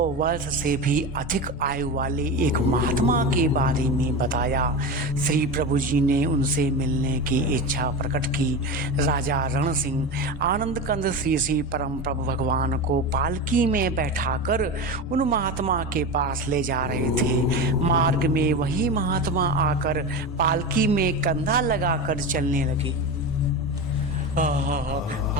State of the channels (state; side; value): normal; both; correlation 0.22